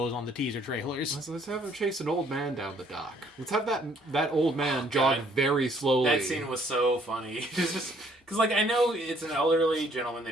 on the teaser trailers. So let's have him chase an old man down the dock. Let's have that old man jog very slowly. That scene was so funny. Because, like, I know it's an elderly gentleman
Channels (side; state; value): both; normal; correlation 0.63